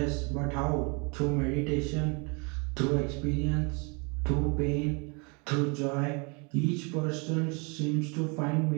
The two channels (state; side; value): quieter; left; 31.9 dB